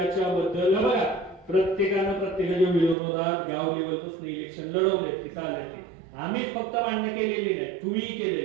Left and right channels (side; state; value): left; drops out; at 3.0 s